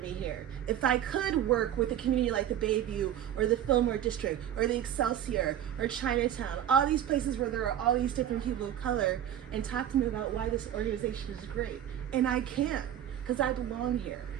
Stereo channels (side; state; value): left; quieter; 10.7 dB